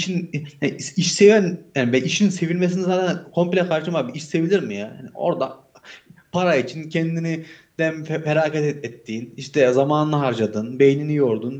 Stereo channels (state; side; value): identical; both; correlation 1.00